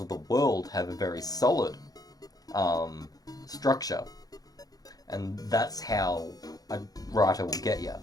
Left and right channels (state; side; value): late; right; 0.18 ms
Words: of the world have a very solid structure. And that's how a writer will get you.